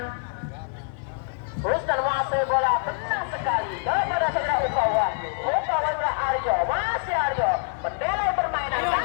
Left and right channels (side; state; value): right; silent; digital silence